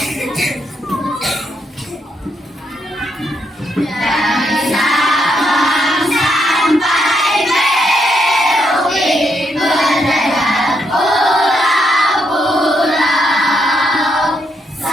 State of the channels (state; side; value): normal; both; correlation 0.78